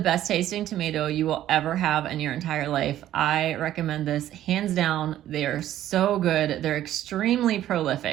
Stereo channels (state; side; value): quieter; left; 12.6 dB